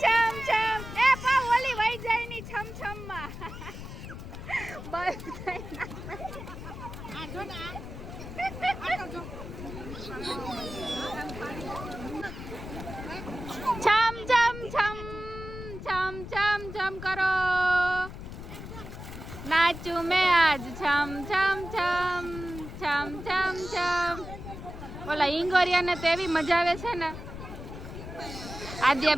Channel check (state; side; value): noise; left; rumble, 10 dB below the sound